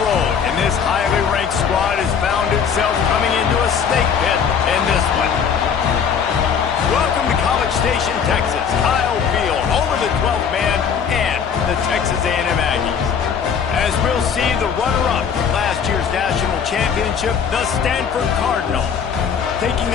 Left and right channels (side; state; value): right; quieter; 7.1 dB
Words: road. And this highly ranked squad has found itself coming into a snake pit in this one. Welcome to College Station, Texas. Kyle Field, home of the 12th man and the Texas A&M Aggies. As we'll see, the runner-up from last year's national championship, the Stanford Cardinal, taking